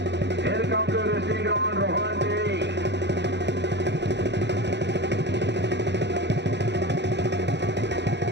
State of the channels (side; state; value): left; late; 0.51 ms